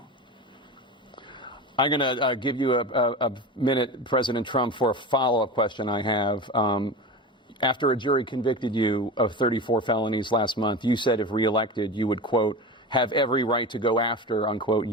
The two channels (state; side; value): normal; both; correlation 0.27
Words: I'm going to give you a minute, President Trump, for a follow-up question I have. After a jury convicted you of 34 felonies last month, you said if reelected, you would, quote, have every right to go after, unquote,